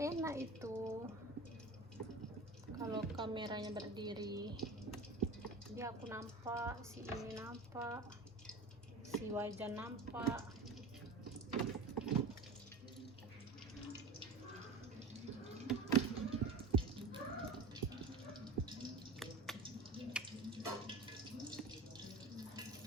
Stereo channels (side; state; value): left; quieter; 3.4 dB